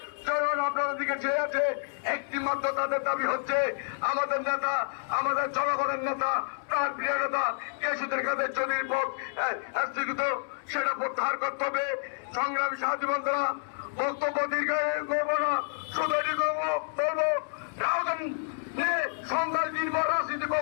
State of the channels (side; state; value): right; silent; 59 dB below the other